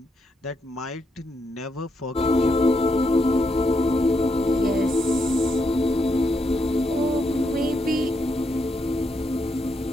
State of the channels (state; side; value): normal; both; correlation 0.80